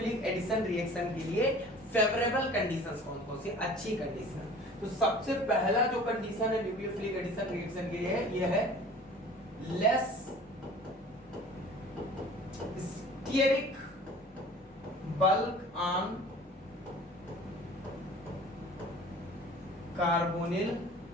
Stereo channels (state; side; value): normal; both; correlation 0.45